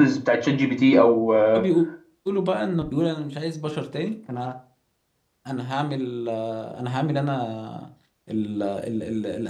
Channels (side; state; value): both; identical; correlation 1.00